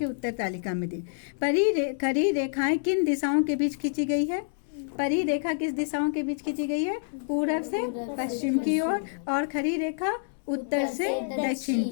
उत्तर तालिका में दें। खरी रेखाएं किन दिशाओं के बीच खींची गई है? परी रेखा किस दिशाओं के बीच खींची गई है? पूरब से पश्चिम की ओर, और खरी रेखा उत्तर से दक्षिण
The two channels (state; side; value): silent; right; 60 dB below the other